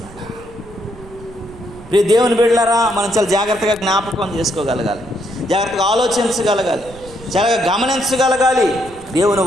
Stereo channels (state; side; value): noise; right; rumble, 20 dB below the sound